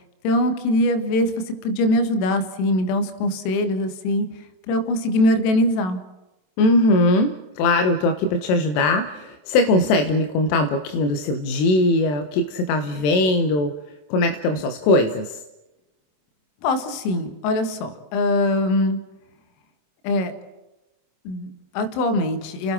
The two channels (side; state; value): right; late; 27 ms